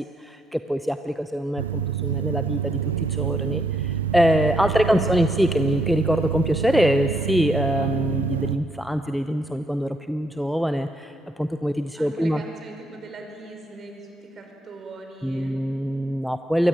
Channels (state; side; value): normal; both; correlation 0.74